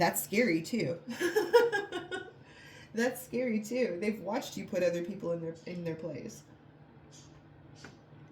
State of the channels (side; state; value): both; identical; correlation 1.00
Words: scary too. That's scary too. They've watched you put other people in their place.